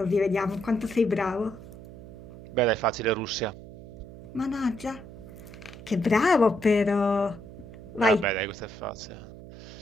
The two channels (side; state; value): right; noise; hum, 15 dB below the sound